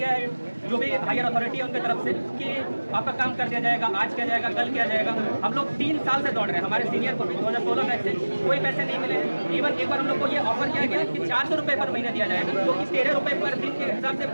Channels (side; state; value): both; inverted; correlation -1.00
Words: है जो भी हायर अथॉरिटी है उनकी तरफ से कि आपका काम कर दिया जाएगा, आज किया जाएगा, कल किया जाएगा। हम लोग 3 साल से दौड़ रहे हैं, हमारे सीनियर को भी 2016 बैच से कोई पैसे नहीं मिले हैं। इवन एक बार हम लोग को ये ऑफर किया गया कि 400 रुपये पर महीना दिया जाएगा, जो कि 13 रुपये पर दिन के हिसाब से